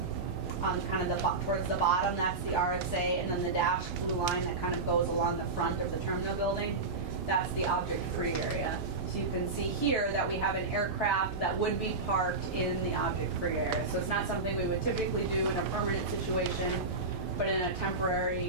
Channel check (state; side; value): quieter; left; 3.7 dB